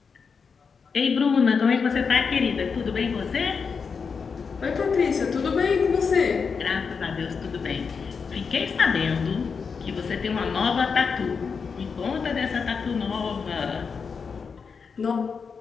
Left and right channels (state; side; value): quieter; right; 5.6 dB